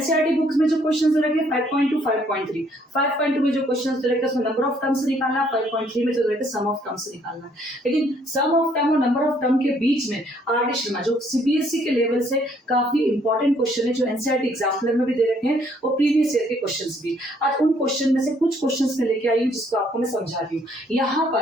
बुक्स में जो क्वेश्चन दे रखे 5.2 5.3 5.2 में जो क्वेश्चन दे रखे उसमें नंबर ऑफ टर्म्स निकालना, 5.3 में जो दे रखे सम ऑफ टर्म्स निकालना है। लेकिन सम ऑफ टर्म और नंबर ऑफ टर्म के बीच में आर डी शर्मा जो सीबीएसई के लेवल से काफी इंपॉर्टेंट क्वेश्चन है, जो एनसीईआरटी एग्जाम्पलर में भी दे रखे हैं और प्रीवियस ईयर के क्वेश्चंस भी। आज उन क्वेश्चन में से कुछ क्वेश्चंस में लेके आई हूँ जिसको आपको मैं समझा रही हूँ। यहाँ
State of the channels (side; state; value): both; normal; correlation 0.65